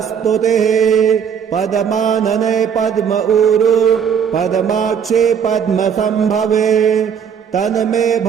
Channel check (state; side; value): quieter; left; 7.6 dB